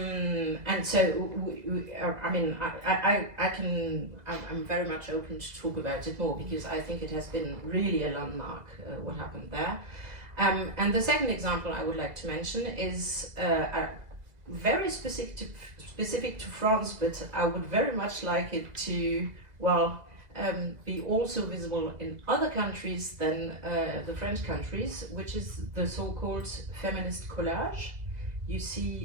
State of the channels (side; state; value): left; late; 2.0 ms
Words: so, I mean, I'm very much open to talk about it more because I think it has been really a landmark, what happened there. And the second example I would like to mention is very specific to France, but I would very much like it to, well, be also visible in other countries than the French countries, which is the so-called feminist collage you